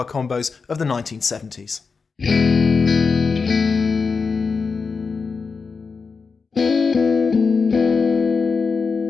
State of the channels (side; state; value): right; quieter; 4.9 dB